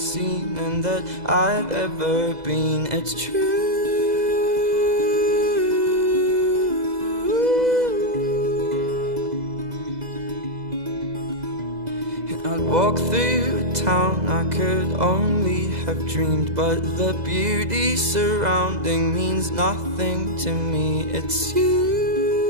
and that I've ever been, it's true. And I'd walk through town, I could only have dreamed, but the beauty surrounding means nothing to me. It's you.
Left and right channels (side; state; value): left; late; 2.0 ms